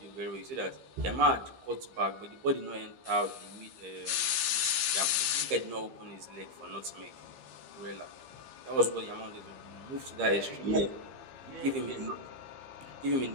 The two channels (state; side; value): late; left; 15 ms